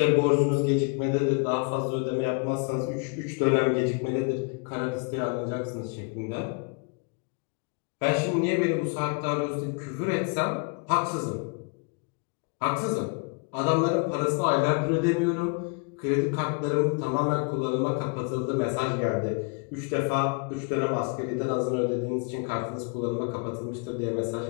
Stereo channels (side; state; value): right; quieter; 33.7 dB